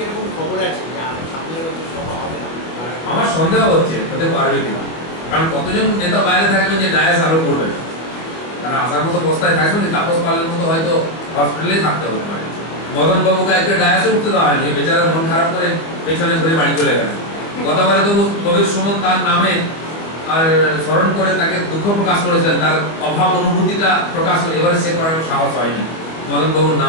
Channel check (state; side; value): late; right; 25 ms